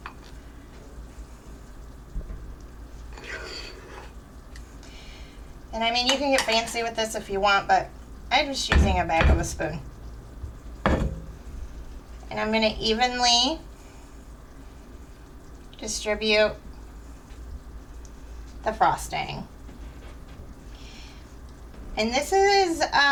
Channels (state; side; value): identical; both; correlation 1.00